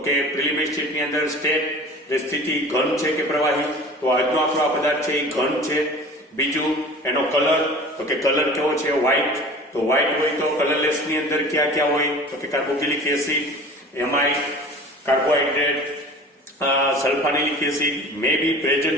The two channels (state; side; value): normal; both; correlation 0.41